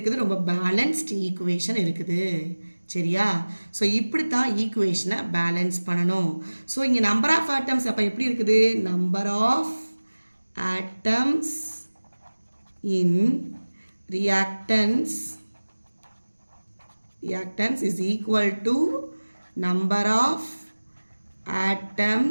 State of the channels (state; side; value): inverted; both; correlation -1.00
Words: ரொம்ப பேலன்ஸ்ட் ஈக்குவேஷன் இருக்குது. சரியா? ஸோ இப்படி தான் ஈக்குவேஷனை பேலன்ஸ் பண்ணணும். ஸோ இங்கே நம்பர் ஆஃப் ஆட்டம்ஸ் அப்போ எப்படி இருக்குது? Number of atoms in reactants is equal to number of